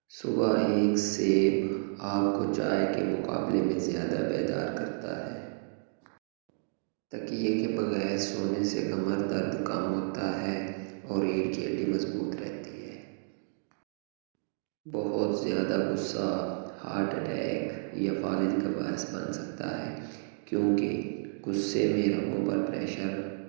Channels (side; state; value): left; silent; digital silence